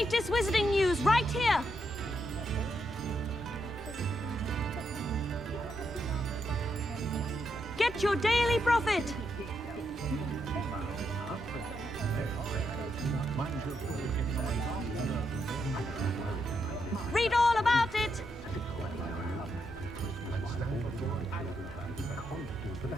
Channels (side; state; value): both; normal; correlation 0.81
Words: wizarding news right here. Get your Daily Prophet. Read all about it.